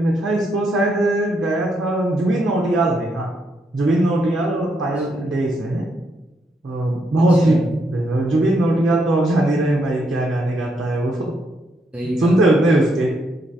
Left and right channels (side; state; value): both; normal; correlation 0.77